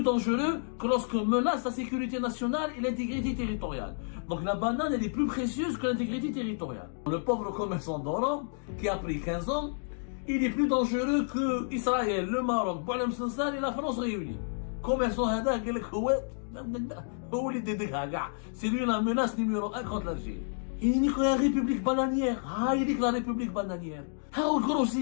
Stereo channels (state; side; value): silent; right; digital silence